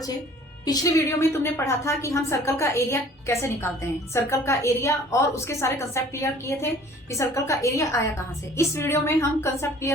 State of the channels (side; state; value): both; normal; correlation 0.51